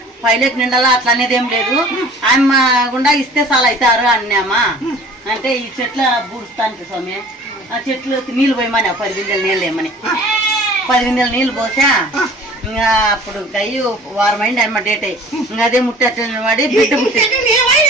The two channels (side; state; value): both; normal; correlation 0.47